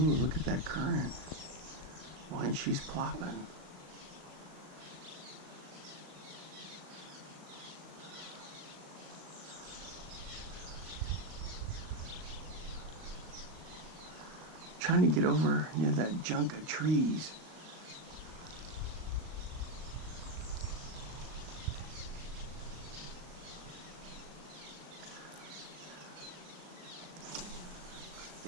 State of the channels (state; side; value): late; left; 38 ms